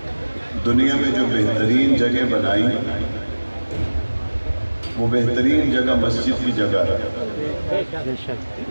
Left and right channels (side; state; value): both; inverted; correlation -1.00